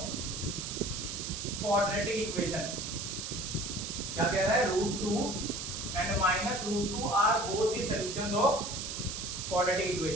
quadratic equation। क्या कह रहा है, √2 and minus √2 are both the solutions of quadratic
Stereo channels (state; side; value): noise; right; hiss, 5 dB below the sound